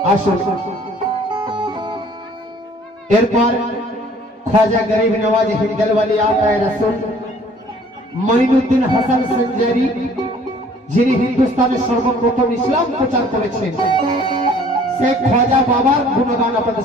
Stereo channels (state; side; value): normal; both; correlation 0.55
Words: আসুন এরপর ख्वाजा गरीब नवाज हिंदलवाली आता है रसूल মঈনুদ্দিন হাসান সঞ্জারি যিনি হিন্দুস্তানের সর্বপ্রথম ইসলাম প্রচার করেছেন সেই ख्वाजा বাবার গুণগান আপনাদের